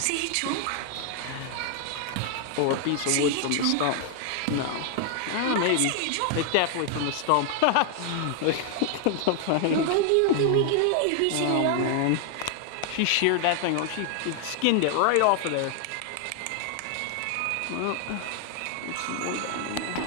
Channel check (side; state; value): both; different; correlation 0.00